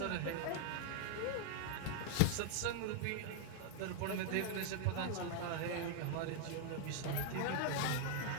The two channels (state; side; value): different; both; correlation 0.00